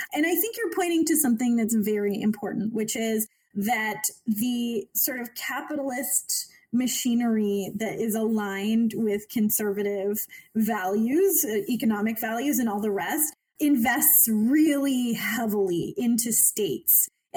And I think you're pointing to something that's very important, which is that the sort of capitalist machinery that is aligned with conservative values, economic values, and all the rest, invests really heavily into states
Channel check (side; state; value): both; identical; correlation 1.00